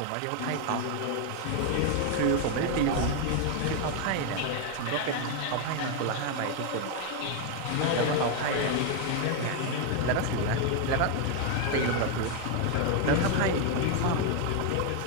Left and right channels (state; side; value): different; both; correlation 0.01